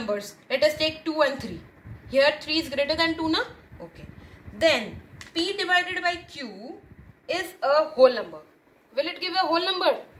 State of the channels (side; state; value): both; identical; correlation 1.00